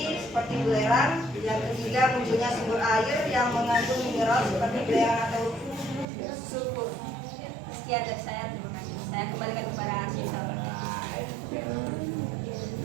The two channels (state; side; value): drops out; left; at 6.1 s